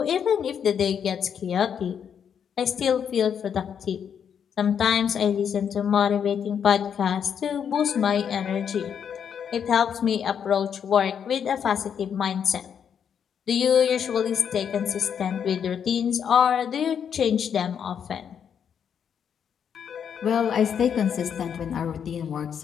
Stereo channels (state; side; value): quieter; right; 7.9 dB